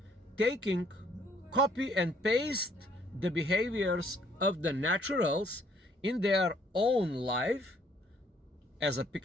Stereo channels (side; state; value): both; normal; correlation 0.64